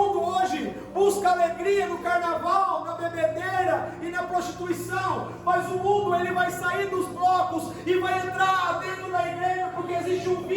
hoje busca alegria no carnaval, na bebedeira e na prostituição. Mas o mundo ele vai sair dos blocos e vai entrar dentro da igreja, porque existe um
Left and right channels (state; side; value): identical; both; correlation 1.00